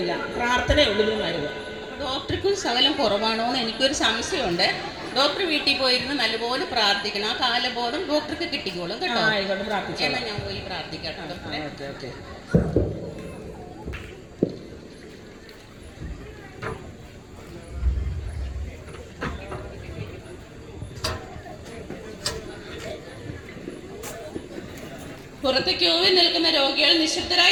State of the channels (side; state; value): both; identical; correlation 1.00